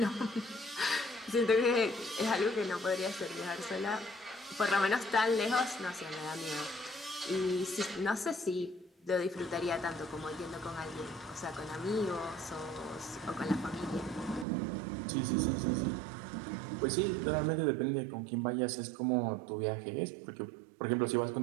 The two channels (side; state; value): left; drops out; at 14.5 s